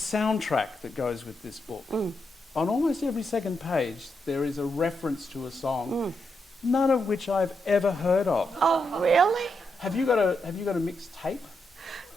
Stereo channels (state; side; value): normal; both; correlation 0.83